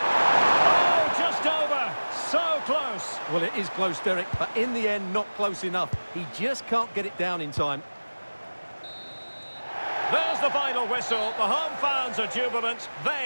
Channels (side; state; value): both; inverted; correlation -1.00